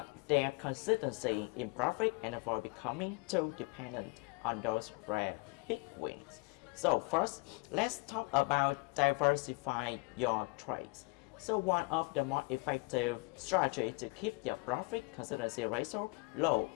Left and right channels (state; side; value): quieter; right; 28.3 dB